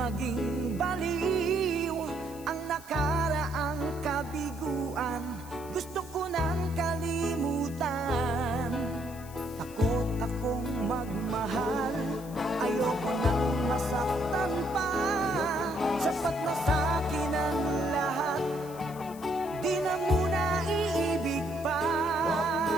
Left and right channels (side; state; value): left; noise; hiss, 19 dB below the sound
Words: baliw ang nakaraang kabiguan. Gusto ko nang kalimutan. Takot akong magmahal. Ayoko nang masaktan pa. Sapat na sa'kin ang lahat. Di na muna iibig pa.